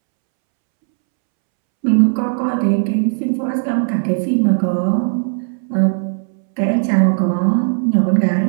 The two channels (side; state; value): left; silent; 68 dB below the other